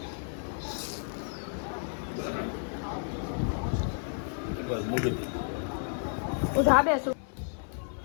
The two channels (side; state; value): right; silent; 57 dB below the other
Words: હું ધાબે છું.